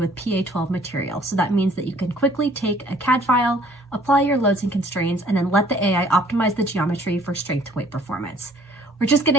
PA12 material. So that means that you can quickly take a CAD file, apply your loads and constraints, and then let the AI optimize the geometry for strength to weight performance. We're just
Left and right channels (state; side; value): normal; both; correlation 0.57